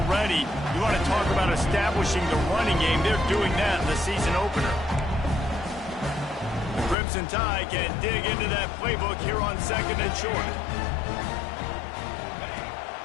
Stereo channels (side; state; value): right; drops out; at 7.0 s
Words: You want to talk about establishing the running game. They're doing that in the season opener. The Crimson Tide can dig into that playbook here on 2nd and short.